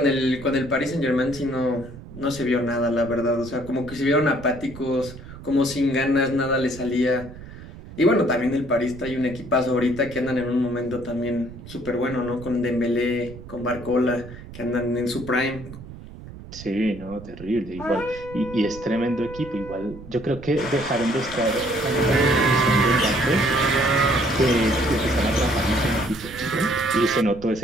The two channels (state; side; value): noise; right; rumble, 15 dB below the sound